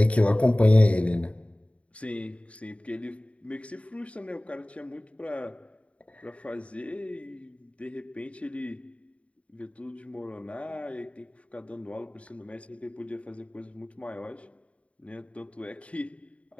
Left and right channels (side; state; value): right; late; 0.064 ms